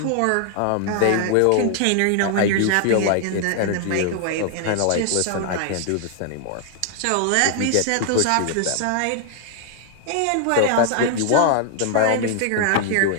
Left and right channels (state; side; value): different; both; correlation 0.00